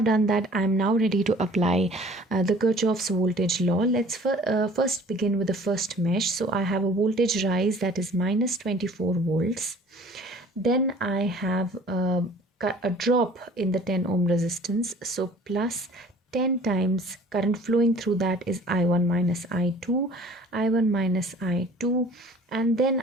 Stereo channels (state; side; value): normal; both; correlation 0.49